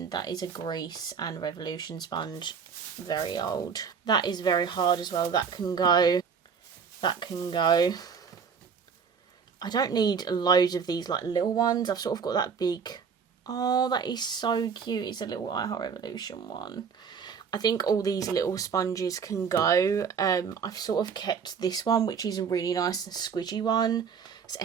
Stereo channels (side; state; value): left; quieter; 6.4 dB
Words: That is a grease and Revolution sponge. Very old. That is very hard as well. That can go. That can go. I don't need loads of these, like, little ones. I've sort of got that big. Oh, that is so cute. It's a little I Heart Revolution one. I think all these little sponges can go. I've sort of kept this one, which is a really nice and squidgy one. So